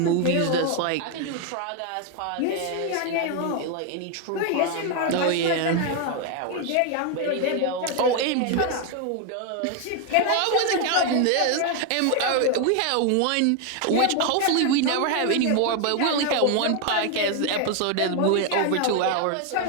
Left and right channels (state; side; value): different; both; correlation 0.01